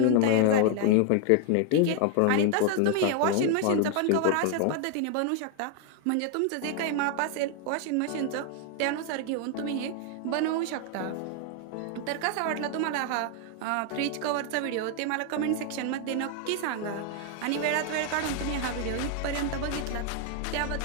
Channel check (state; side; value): different; both; correlation 0.00